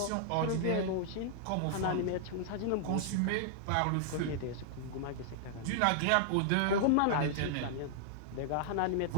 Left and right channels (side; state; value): both; different; correlation -0.01